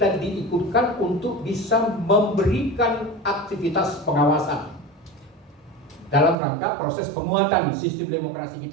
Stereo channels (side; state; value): left; drops out; at 6.4 s